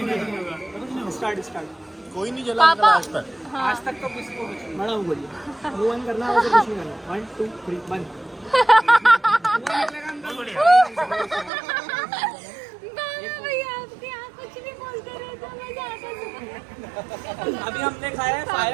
Start start. कोई नहीं जला पापा आज तक। हाँ आज तक तो किसी को कुछ नहीं। मैडम बोलिए। वो वन करना है तो कुछ नहीं करना। 1 2 3 1। भैया आपके यहाँ कुछ नहीं बोलते रहे तो मजा आता है। अभी हमने खाया है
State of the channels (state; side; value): drops out; left; at 11.5 s